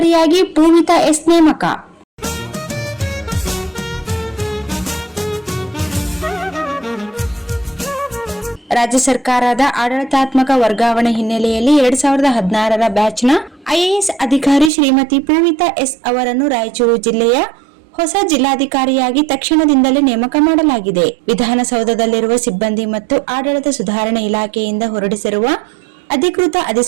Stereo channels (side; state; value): left; drops out; at 14.7 s